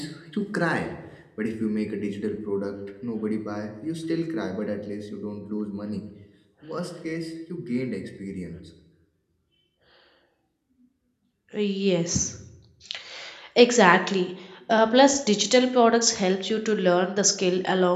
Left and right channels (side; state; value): both; identical; correlation 1.00